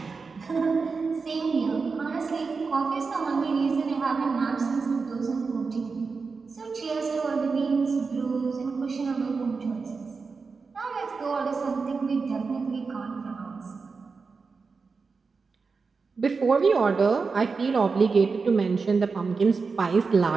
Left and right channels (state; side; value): quieter; left; 4.7 dB